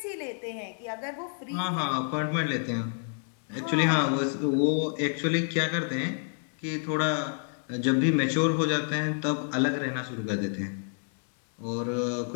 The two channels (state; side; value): silent; right; 59 dB below the other